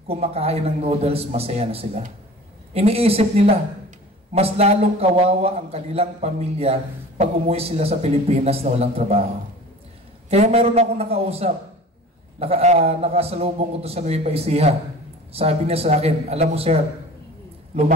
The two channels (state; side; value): normal; both; correlation 0.41